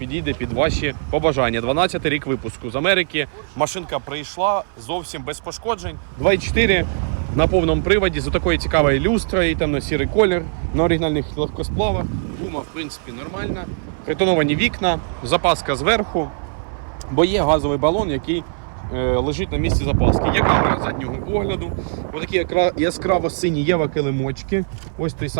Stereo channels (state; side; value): silent; left; 60 dB below the other